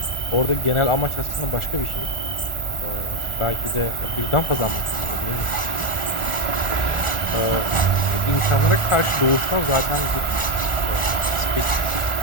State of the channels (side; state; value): right; late; 1.4 ms